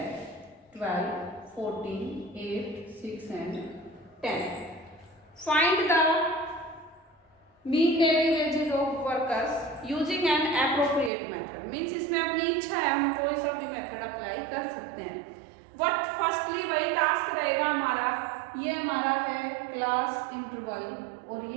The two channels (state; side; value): drops out; left; at 11.1 s